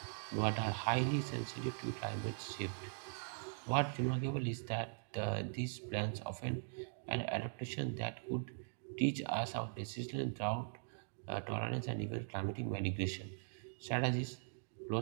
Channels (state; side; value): silent; left; digital silence